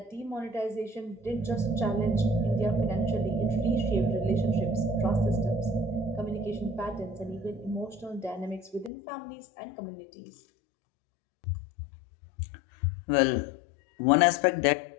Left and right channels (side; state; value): right; drops out; at 8.9 s